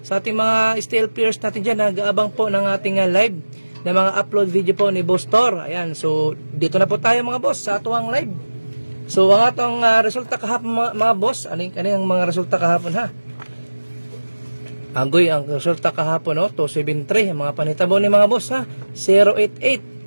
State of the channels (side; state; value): both; inverted; correlation -1.00